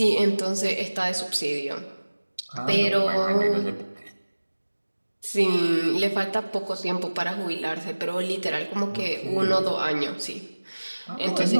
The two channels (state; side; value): inverted; both; correlation -1.00